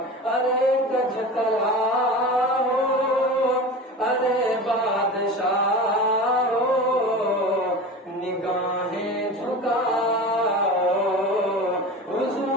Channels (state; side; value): normal; both; correlation 0.32